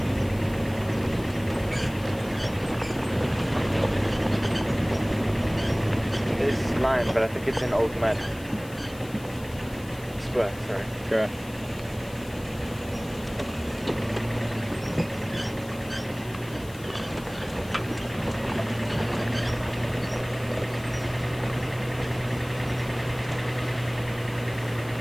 Line, but I think it's an old mud. Spur, sorry. Sure.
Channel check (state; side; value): noise; left; hiss, 20 dB below the sound